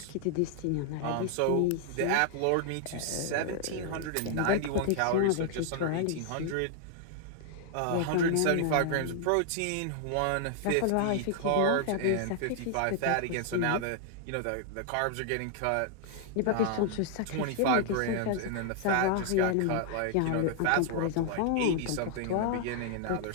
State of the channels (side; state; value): both; different; correlation 0.00